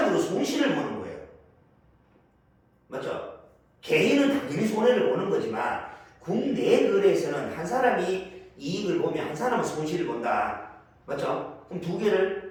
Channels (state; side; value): identical; both; correlation 1.00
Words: 손실을 보는 거예요. 맞죠? 개인은 당연히 손해를 보는 거지만 국내 거래에서는 한 사람이 이익을 보면 한 사람은 손실을 본다. 맞죠? 그럼 두